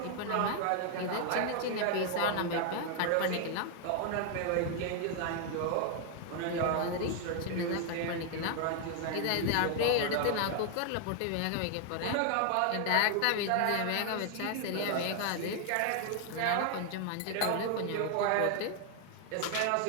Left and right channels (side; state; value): both; different; correlation 0.00